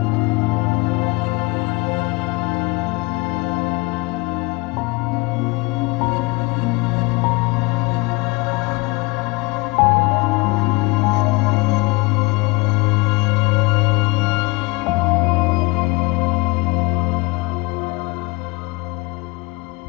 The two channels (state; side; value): quieter; right; 25.3 dB